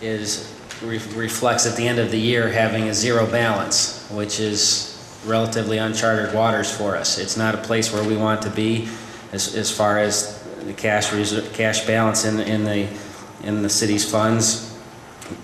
reflects at the end of the year having a zero balance, which is relatively uncharted waters for us. It's not a place where we want to be as far as the cash balance in the city's funds.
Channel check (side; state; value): both; identical; correlation 1.00